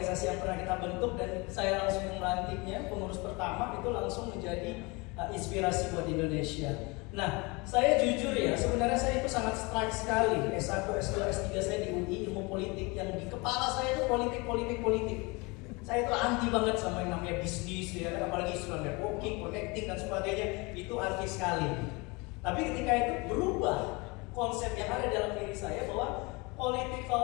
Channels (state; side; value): quieter; right; 26.8 dB